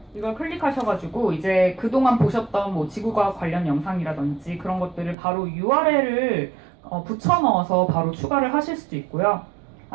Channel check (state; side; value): drops out; left; at 5.2 s